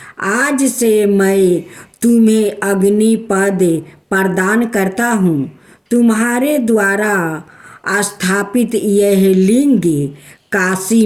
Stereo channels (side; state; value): both; identical; correlation 1.00